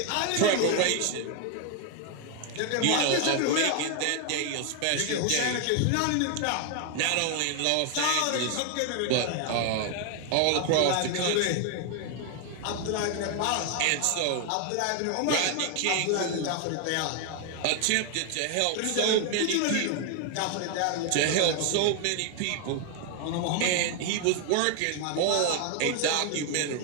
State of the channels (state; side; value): different; both; correlation 0.01